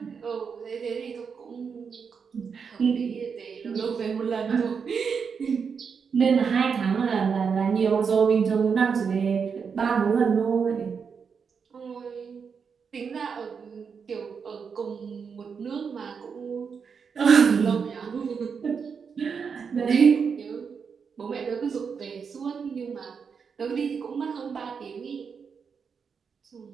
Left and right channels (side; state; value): left; quieter; 6.1 dB